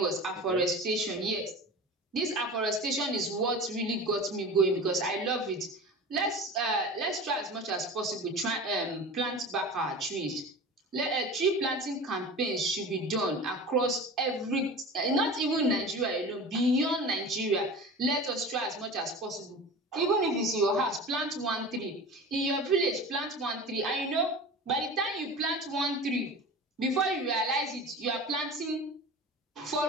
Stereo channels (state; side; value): normal; both; correlation 0.34